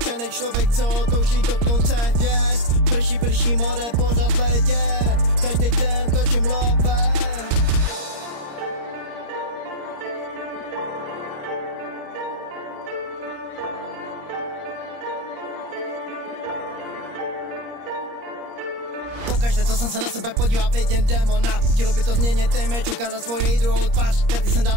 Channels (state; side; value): late; left; 26 ms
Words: člověk, co touží dotknout se hvězd. Prší more, pořád ledě, každý den točím love. Pokaždé, co jsem se na sebe podíval, vidím démona. Chtělo by to změnit image, ukázat svoji druhou tvář. Karty jsem